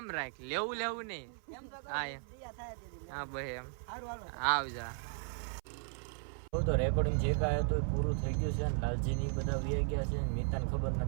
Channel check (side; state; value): left; silent; 54 dB below the other